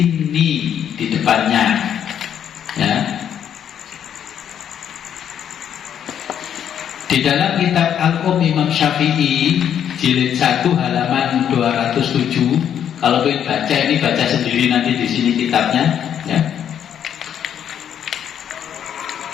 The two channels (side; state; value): right; quieter; 9.2 dB